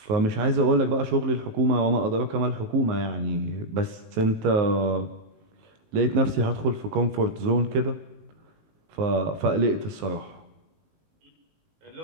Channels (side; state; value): left; late; 19 ms